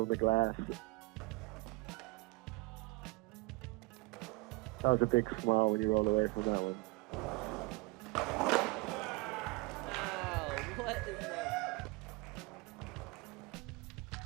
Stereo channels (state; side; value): quieter; left; 24.4 dB